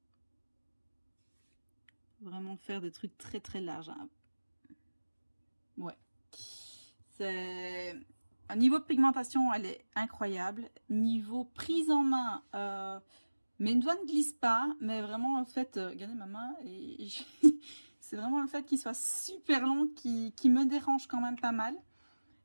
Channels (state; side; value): inverted; both; correlation -1.00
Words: Vraiment faire des trucs très très larges. Hein. Ouais. C'est... Un niveau de pigmentation, elle est incroyable. Niveau prise en main, mes doigts ne glissent pas, mais vraiment, en fait, regardez ma main, et c'est vraiment le fait qu'il soit super long qui me dérange quand même pas mal.